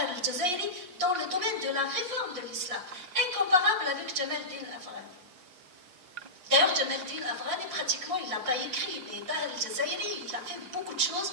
al-Jazairi, dans le domaine de la réforme de l'islam, incomparable avec Jamal Din Afghani. D'ailleurs, Jamal Din Afghani, pratiquement, il n'a pas écrit, mais Tahir al-Jazairi, il a fait beaucoup de choses,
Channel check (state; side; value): late; left; 5.5 ms